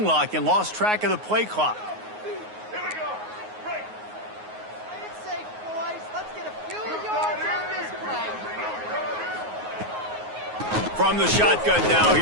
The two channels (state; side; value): late; left; 9.5 ms